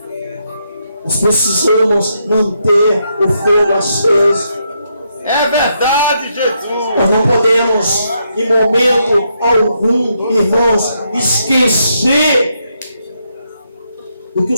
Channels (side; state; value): both; inverted; correlation -0.79